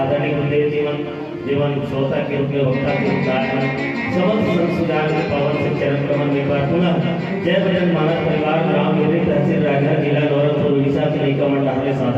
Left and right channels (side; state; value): both; identical; correlation 1.00